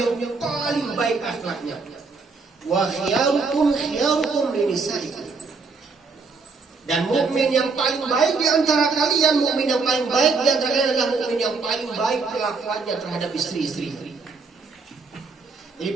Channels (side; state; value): left; quieter; 4.4 dB